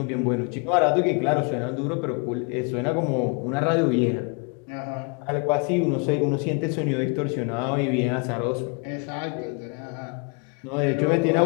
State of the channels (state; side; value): quieter; right; 34.3 dB